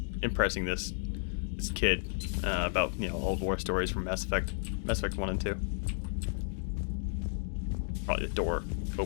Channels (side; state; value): right; silent; digital silence